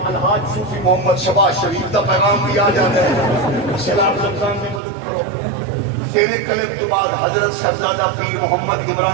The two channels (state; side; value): drops out; left; at 4.8 s